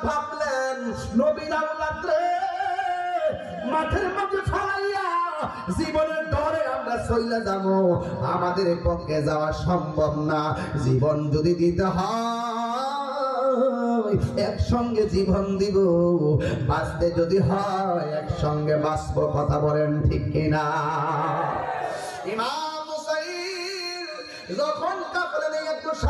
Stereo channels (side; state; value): both; identical; correlation 1.00